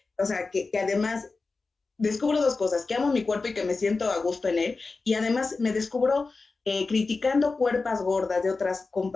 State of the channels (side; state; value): right; quieter; 4.0 dB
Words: o sea, que además descubro dos cosas, que amo mi cuerpo y que me siento a gusto en él, y además me descubro criticando cuerpas gordas de otras